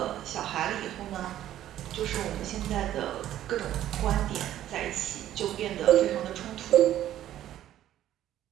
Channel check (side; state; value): left; quieter; 12.4 dB